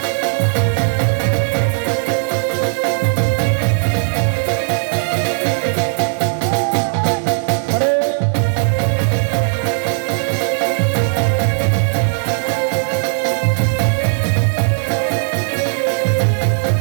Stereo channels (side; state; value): left; silent; 66 dB below the other